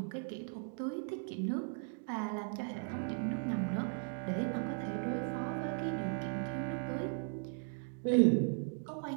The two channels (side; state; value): left; silent; 53 dB below the other